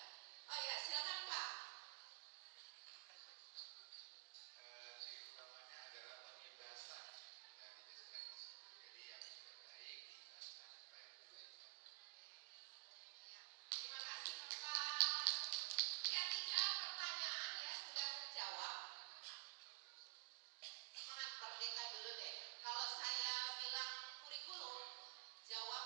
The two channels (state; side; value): silent; left; digital silence